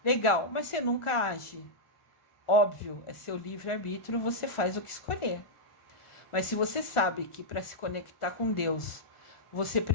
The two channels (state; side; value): late; right; 1.4 ms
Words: Legal, mas você nunca age. Óbvio, é seu livre-arbítrio, você faz o que escolher. Mas se você sabe que para se conectar com Deus, você